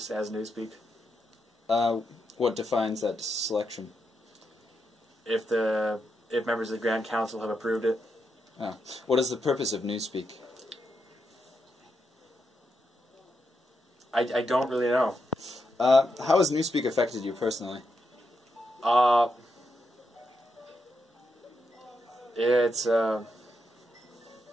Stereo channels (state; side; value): normal; both; correlation 0.83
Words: as Newspeak. What defines that selection? If members of the Grand Council have approved it. Oh. What is the purpose of Newspeak? I don't really know. How has Newspeak affected you personally? It's